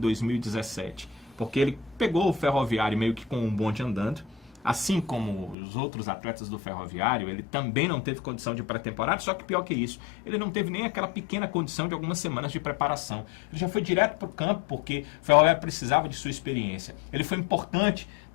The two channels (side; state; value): right; drops out; at 5.6 s